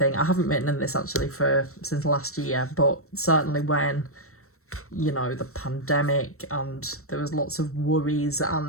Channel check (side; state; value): right; late; 0.63 ms